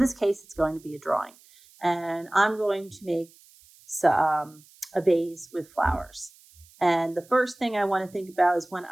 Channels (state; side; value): noise; right; hiss, 27 dB below the sound